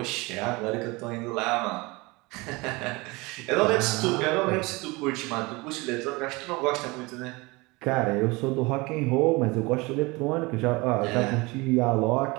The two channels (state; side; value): quieter; left; 24.4 dB